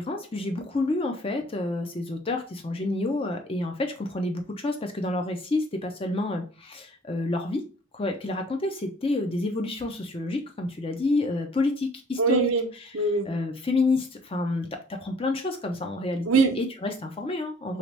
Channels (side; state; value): both; normal; correlation 0.57